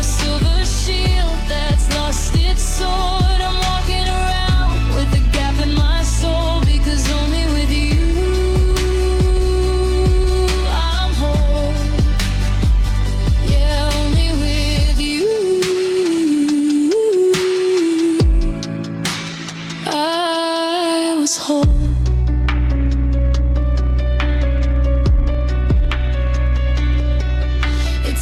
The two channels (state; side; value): identical; both; correlation 1.00